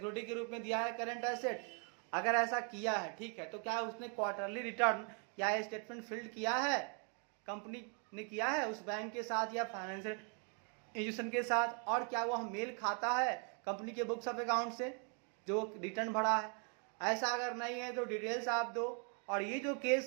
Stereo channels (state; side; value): quieter; left; 39.3 dB